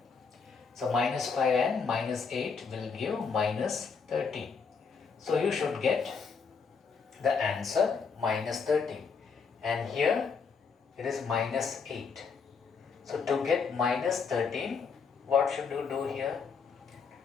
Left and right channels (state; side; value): quieter; right; 5.5 dB